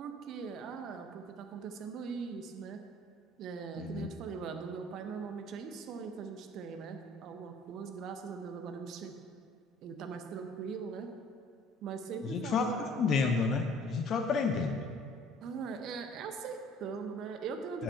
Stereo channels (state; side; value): normal; both; correlation 0.53